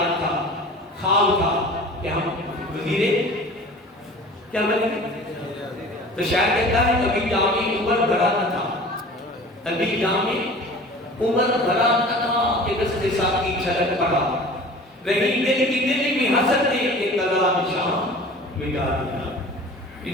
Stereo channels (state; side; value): normal; both; correlation 0.41